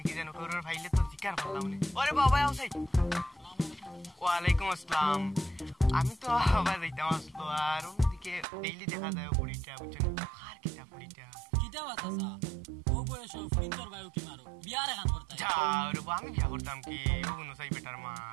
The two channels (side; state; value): left; drops out; at 8.5 s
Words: কি যেন করর ফাইলে তো জিকার করলাম না ওরে বাবা আউসাই ওয়ালাইকুম আসসালাম আমি তো আবার যাইতাম আসলো আর ওদিকে ডেইলি দেখা যায় ফুলিটা বুঝছেন আর কিটা ফুলিটা কিটা বাতাসা ও বয়স ফুলিন্তর বায়ু কি মারো বিয়ার গান করতে যা রে আমি বিয়া করতাম কি ও কোনো সাই বেটার মা